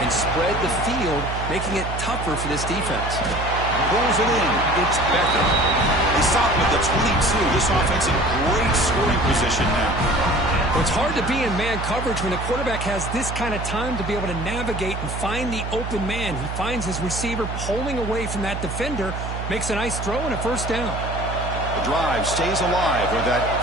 spread the field, making it tougher for this defense. Pulls it in. It's Becker. They stop with the 22. This offense in great scoring position now. Well, it's hard to be in man coverage when the quarterback has this kind of time to be able to navigate and find the open man. He finds his receiver pulling away from that defender, makes a nice throw and a first down. The drive stays alive with that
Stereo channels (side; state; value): right; noise; hum, 5 dB below the sound